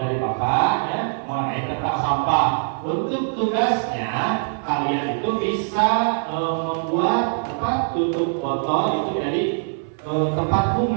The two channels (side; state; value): left; silent; 57 dB below the other